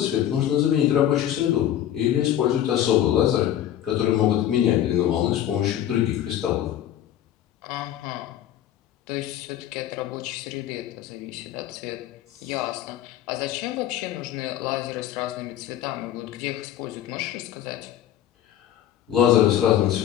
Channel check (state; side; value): quieter; right; 11.5 dB